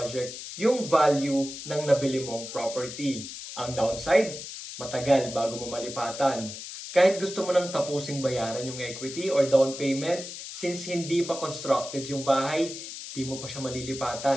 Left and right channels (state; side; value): noise; left; hiss, 10 dB below the sound